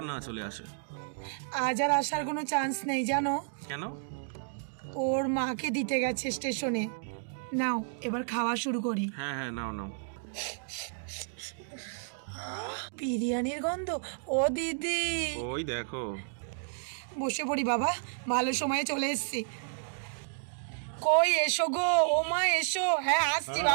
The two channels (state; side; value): silent; left; digital silence